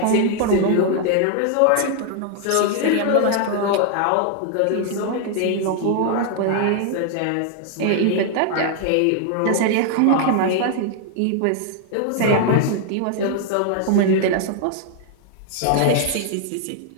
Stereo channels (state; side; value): different; both; correlation 0.00